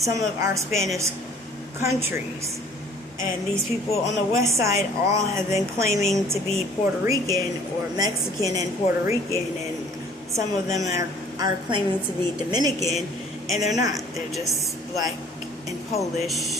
of our Spanish countries. And these people on the west side all have been claiming to be Puerto Rican or Mexican and Puerto Rican, and some of them are claiming to be Dominican, and they're not. They're just black and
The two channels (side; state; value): both; normal; correlation 0.54